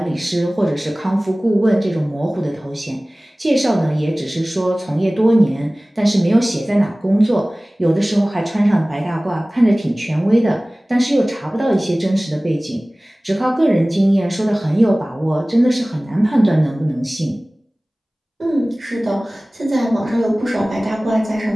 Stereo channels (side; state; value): both; normal; correlation 0.98